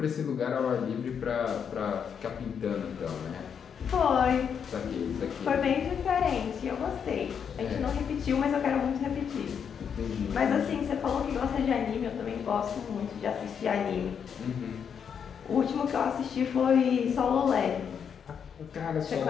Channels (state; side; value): quieter; right; 7.4 dB